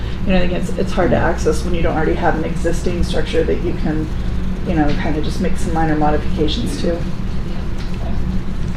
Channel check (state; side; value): identical; both; correlation 1.00